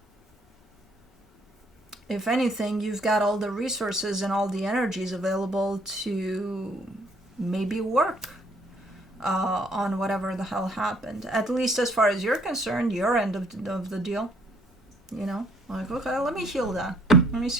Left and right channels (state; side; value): normal; both; correlation 0.64